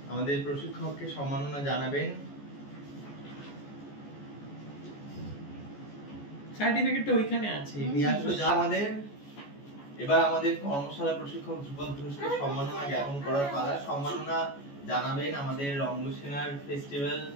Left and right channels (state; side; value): late; right; 14 ms